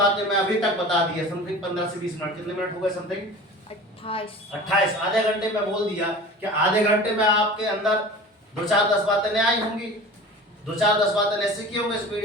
मैं अभी तक बता दी है, समथिंग 15 से 20 मिनट, कितने मिनट हो गए, समथिंग 28, आधे घंटे में बोल दिया कि आधे घंटे में आपके अंदर 2-4-10 बातें नहीं आई होंगी, 2-4-10 बातें नहीं सीखे होंगे, इस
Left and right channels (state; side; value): normal; both; correlation 0.38